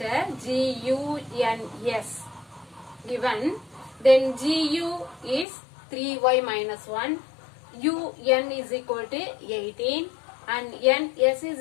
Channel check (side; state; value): right; drops out; at 5.5 s